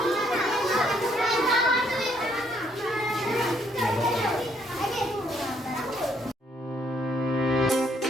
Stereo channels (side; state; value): both; normal; correlation 0.69